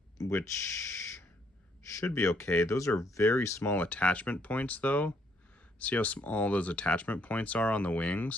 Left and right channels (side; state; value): both; normal; correlation 0.69